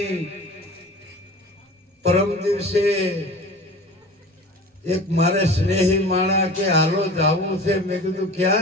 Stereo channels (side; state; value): both; normal; correlation 0.38